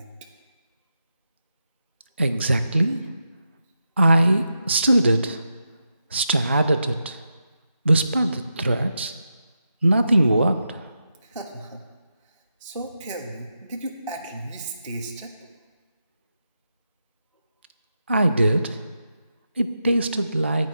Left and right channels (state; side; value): inverted; both; correlation -0.87